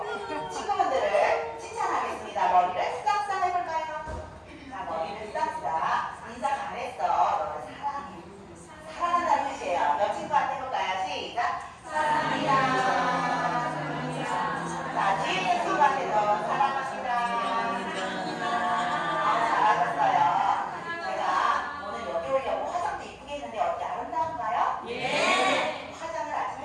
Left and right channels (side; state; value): both; identical; correlation 1.00